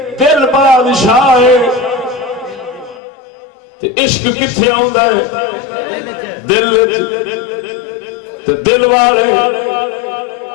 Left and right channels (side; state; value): right; drops out; at 3.0 s